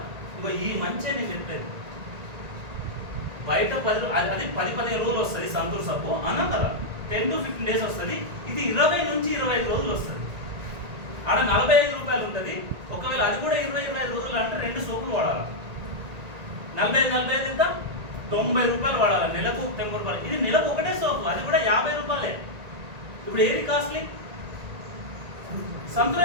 ఇగో ఈ మంచి నేను చెప్పేది. బయట 10-15 రోజులు వస్తుంది సంతూర్ సబ్బు అన్నా కదా, 10 to 15 days వస్తుంది. ఇది 20 నుంచి 25 రోజులు వస్తుంది. ఆడ ₹45 ఉంటుంది. ఒకవేళ అది కూడా 20-25 రోజులు అంటే 2 సోపులు వాడాలి. 45 ఎంత? ₹90 వాడాలి. నెలకు ₹90. ఇది నెలకు ఒకటే సోపు, అది కూడా ₹50. ఇప్పుడు ఏది కాస్ట్లీ?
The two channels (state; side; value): late; left; 1.9 ms